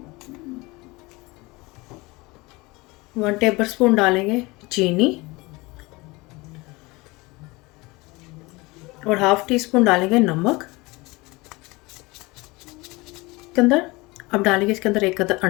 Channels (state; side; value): quieter; right; 23.5 dB